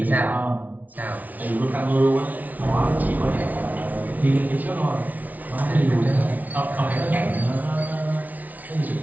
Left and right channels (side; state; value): left; late; 0.076 ms